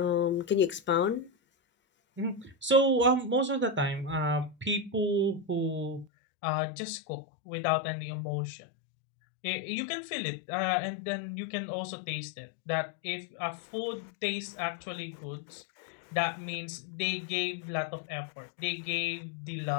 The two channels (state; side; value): drops out; right; at 6.1 s